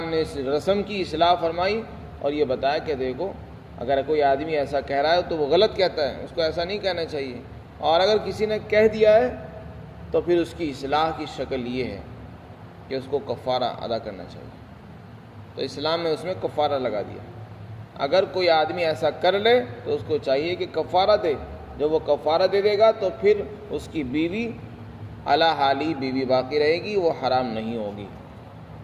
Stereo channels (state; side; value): identical; both; correlation 1.00